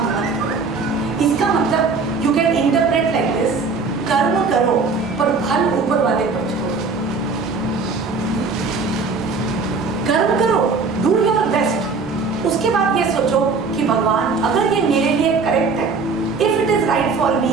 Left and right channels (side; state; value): left; quieter; 4.5 dB